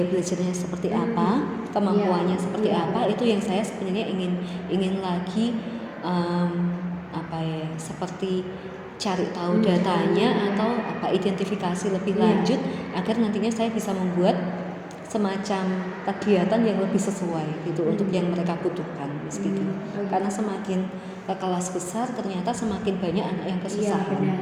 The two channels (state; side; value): identical; both; correlation 1.00